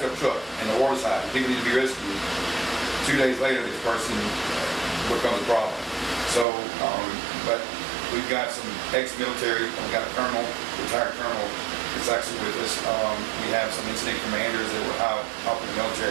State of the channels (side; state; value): left; drops out; at 6.5 s